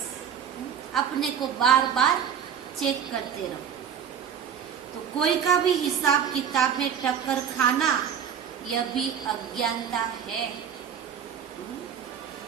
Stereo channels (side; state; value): left; quieter; 8.1 dB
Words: अपने को बार बार चेक करते रहो। तो कोई का भी हिसाब किताब में टक्कर खाना यह भी अज्ञानता है।